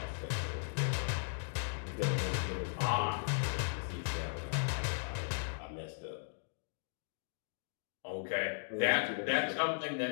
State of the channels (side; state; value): right; silent; digital silence